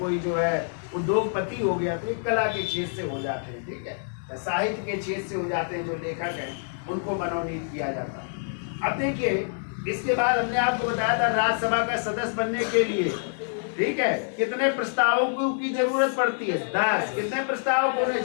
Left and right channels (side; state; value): right; silent; digital silence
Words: जो है उद्योगपति हो गया, तो ये कला के क्षेत्र से हो जाते हैं, ठीक है, साहित्य के क्षेत्र से हो जाते हैं। जो लेखक हैं उनको मनोनीत किया जाता है। अब देखिए, इसके बाद हमने आपको बताया था राज्यसभा का सदस्य बनने के लिए, ठीक है, कितने प्रस्तावकों की जरूरत पड़ती है? 10। कितने प्रस्तावक होने